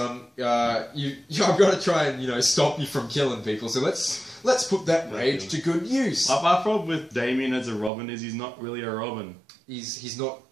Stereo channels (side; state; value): left; drops out; at 7.9 s